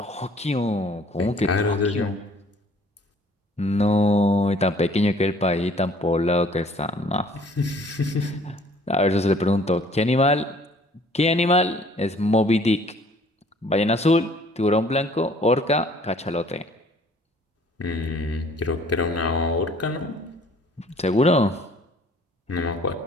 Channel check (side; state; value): both; normal; correlation 0.56